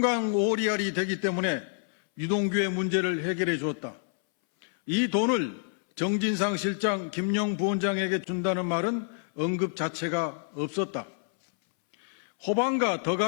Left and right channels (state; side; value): silent; right; 59 dB below the other